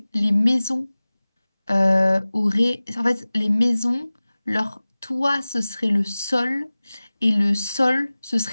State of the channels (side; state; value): both; inverted; correlation -0.98